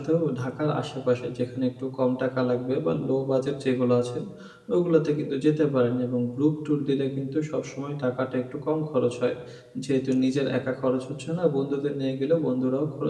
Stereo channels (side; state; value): both; identical; correlation 1.00